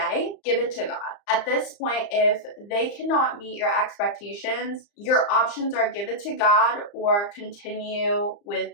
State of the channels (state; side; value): late; right; 34 ms